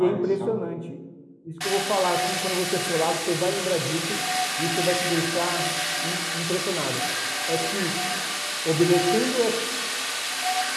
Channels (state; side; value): identical; both; correlation 1.00